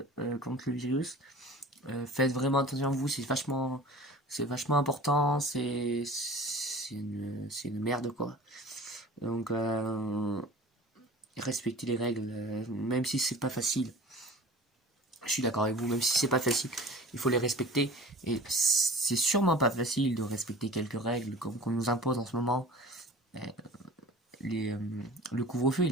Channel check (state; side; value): normal; both; correlation 0.40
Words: contre le virus. Faites vraiment attention à vous, c'est vachement important, c'est une merde quoi. Donc respectez les règles, même si c'est pas facile. Je suis d'accord avec vous, même si c'est pas facile, il faut les respecter. Et c'est sûrement pas facile de respecter quelques règles comme qu'on nous impose en ce moment. Euh, les, euh, le couvre-feu